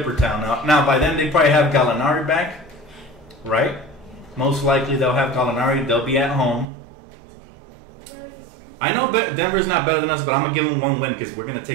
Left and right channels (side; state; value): left; drops out; at 6.7 s